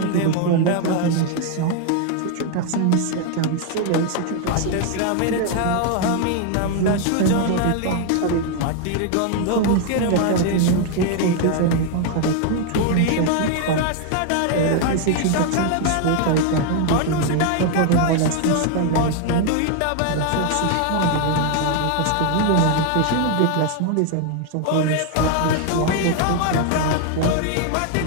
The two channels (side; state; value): both; different; correlation 0.00